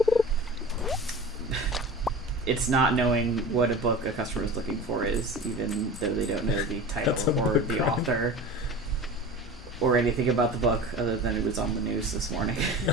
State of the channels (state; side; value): normal; both; correlation 0.35